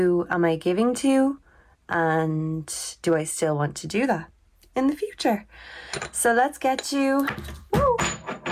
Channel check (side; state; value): both; identical; correlation 1.00